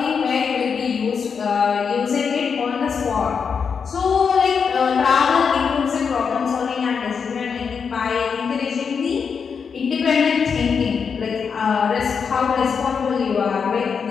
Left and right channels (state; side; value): quieter; right; 6.1 dB